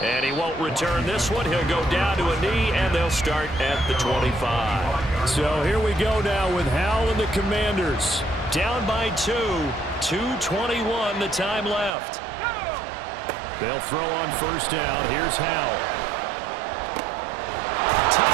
And he won't return this one. He'll go down to a knee, and they'll start at the 25. So here we go now with Howell and the Commanders. Down by 2. 2:21 the time left. They'll throw on first down. Here's Howell.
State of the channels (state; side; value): drops out; left; at 11.9 s